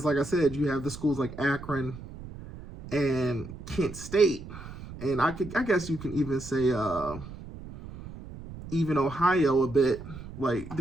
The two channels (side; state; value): right; noise; rumble, 13 dB below the sound